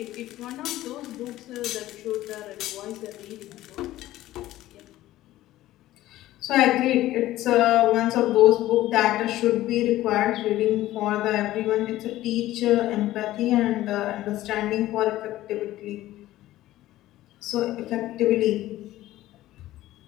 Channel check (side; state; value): right; quieter; 15.3 dB